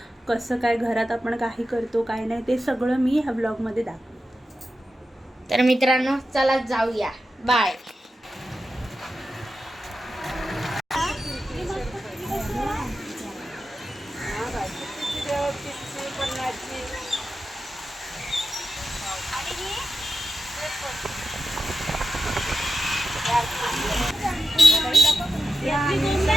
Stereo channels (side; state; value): both; normal; correlation 0.91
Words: कसं काय घरात आपण काही करतो काय नाही ते सगळं मी ह्या व्लॉगमध्ये दाखवेन. तर मित्रांनो चला जाऊया. बाय.